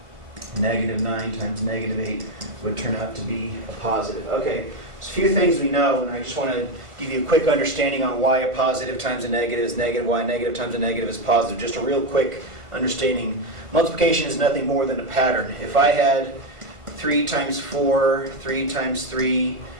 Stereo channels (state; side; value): late; left; 1.5 ms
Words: negative 9 times negative 8 would turn out to be a positive. Okay, so a few things we know, and I just want to give you a quick understanding on why a positive times a negative is negative, why a negative times a negative is positive. Just a real quick understanding. Multiplication is nothing more than a pattern. If I had 3 times 4, 3 times 3,